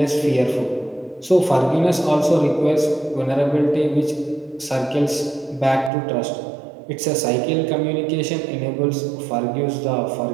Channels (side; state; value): left; drops out; at 5.9 s